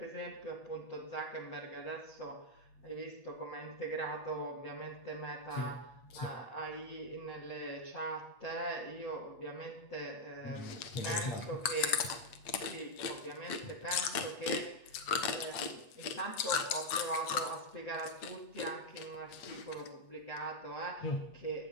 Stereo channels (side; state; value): right; late; 8.2 ms